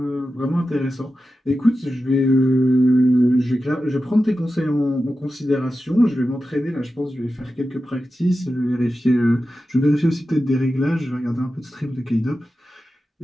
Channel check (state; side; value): normal; both; correlation 0.92